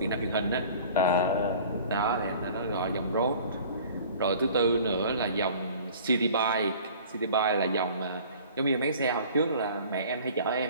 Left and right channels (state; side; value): inverted; both; correlation -0.47